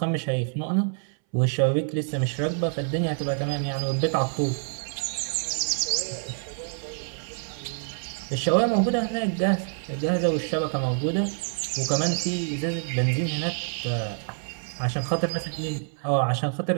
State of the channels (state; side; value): silent; left; 60 dB below the other